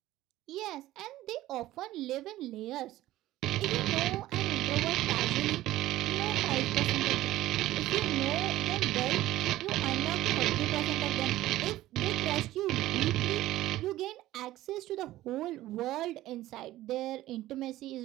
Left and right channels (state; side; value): quieter; left; 15.6 dB